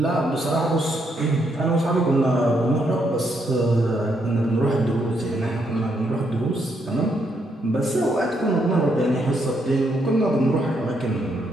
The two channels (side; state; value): both; normal; correlation 0.76